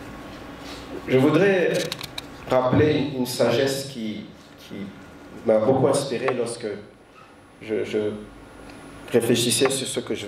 je voudrais rappeler une sagesse qui m'a beaucoup inspiré lorsque je réfléchissais sur ce que je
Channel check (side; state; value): both; identical; correlation 1.00